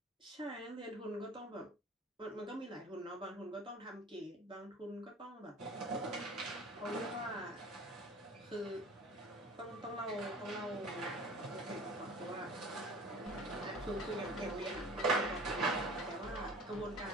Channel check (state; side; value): normal; both; correlation 0.42